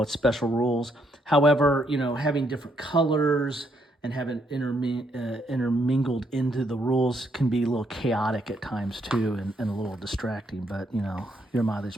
special rules. However, having different colors and having intermingled into the rules can be a little chaotic at times too, and a little distracting. But, your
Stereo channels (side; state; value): both; normal; correlation 0.74